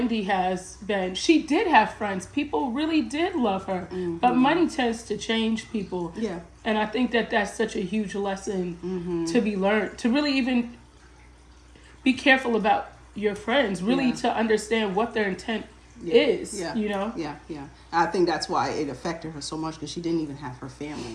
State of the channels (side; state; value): both; identical; correlation 1.00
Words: has been, she did have friends. People really did love her. But money tends to change people. Yeah. And I think that that's such a huge lesson to be learned. To really even be careful about your friends. Really to understand what their intent is, you know? Yeah. I think that's why it affected her so much, because she didn't even have her